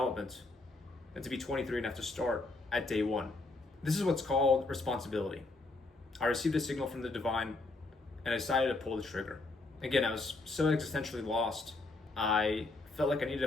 than to be 23 and have to start at day one. This is what's called responsibility. I received a signal from the divine and I decided to pull the trigger. Again, I was so existentially lost. I felt like I needed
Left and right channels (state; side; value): quieter; right; 3.2 dB